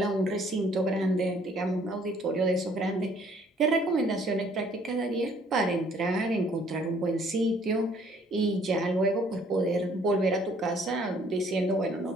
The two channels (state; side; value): normal; both; correlation 0.61